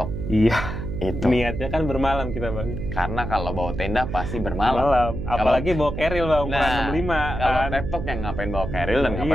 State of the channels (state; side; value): noise; right; hum, 6 dB below the sound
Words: Iya. Itu. Niatnya kan bermalam kita Bang. Karena kalau bawa tenda pasti bermalam. Apalagi bawa keril Bang, ukuran 65 kalau kan. tektok yang ngapain bawa keril dan